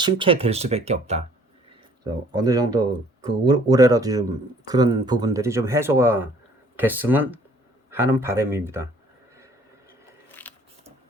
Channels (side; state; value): both; normal; correlation 0.57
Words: 수밖에 없다. 그래서 어느 정도 그 올해라도 좀 그런 부분들이 좀 해소가 됐으면 하는 바람입니다.